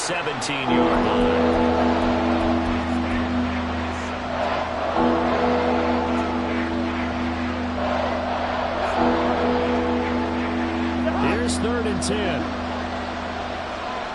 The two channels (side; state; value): both; identical; correlation 1.00